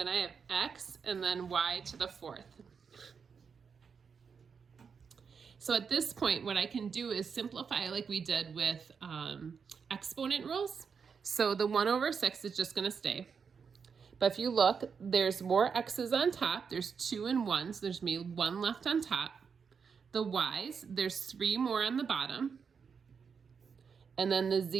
I have x and then y to the 4th. So at this point, what I can do is simplify like we did with exponent rules. So the 1 over 6 is just gonna stay. But if you look, there's more x's on top. There's 2 and 1, so there's gonna be 1 left on top. The y's, there's 3 more on the bottom. And then the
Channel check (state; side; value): quieter; left; 6.1 dB